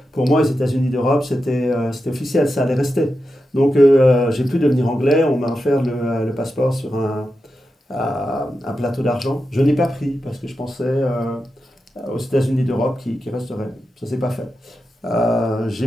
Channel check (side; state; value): both; normal; correlation 0.89